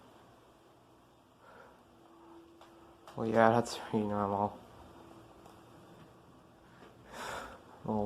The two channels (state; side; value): identical; both; correlation 1.00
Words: Well, yeah, that's pretty normal.